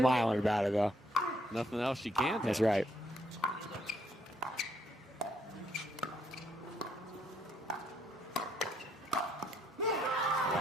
about it though. Nothing else you can do. That's right.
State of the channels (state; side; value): normal; both; correlation 0.71